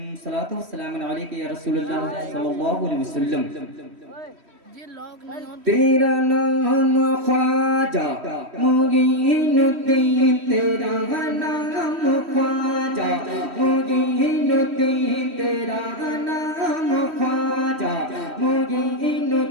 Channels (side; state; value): left; late; 3.1 ms